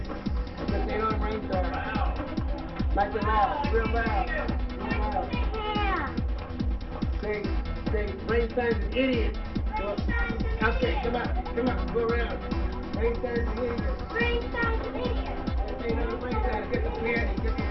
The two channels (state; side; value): identical; both; correlation 1.00